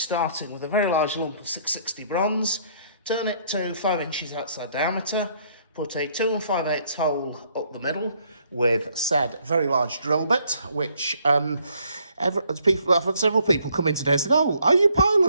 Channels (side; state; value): both; inverted; correlation -0.66